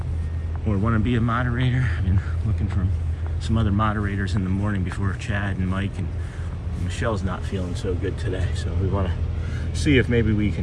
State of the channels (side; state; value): both; identical; correlation 1.00